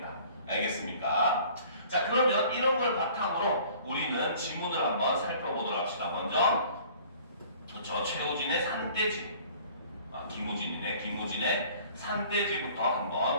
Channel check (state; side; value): inverted; both; correlation -0.51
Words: 알겠습니까? 자, 그러면 이런 걸 바탕으로 우리는 지문을 한번 살펴보도록 합시다. 먼저 최우진의 산돼지, 김우진의 산돼지부터